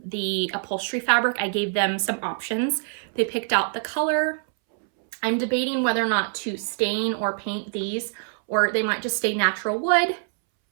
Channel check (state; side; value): silent; left; 62 dB below the other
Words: the upholstery fabric. I gave them some options. They picked out the color. I'm debating whether or not to stain or paint these, or they might just stay natural wood.